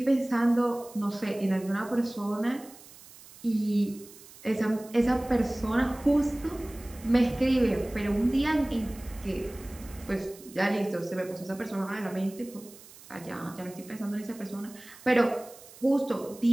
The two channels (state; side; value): noise; right; hiss, 20 dB below the sound